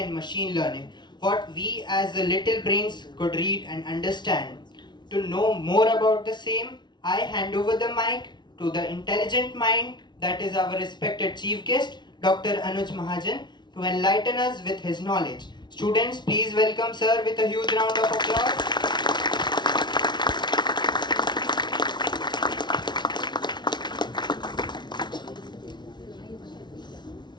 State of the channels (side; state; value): right; late; 0.21 ms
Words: machine learning, what we as the little brains could read and understand. To know more about the same, I hand over the mic to the intelligent mind that is our respected chief guest, Dr. Anuj Mahajan, to enlighten us with his knowledge. Students, please welcome sir with a huge round of applause.